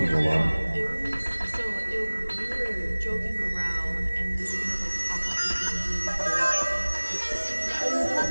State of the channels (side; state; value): both; inverted; correlation -1.00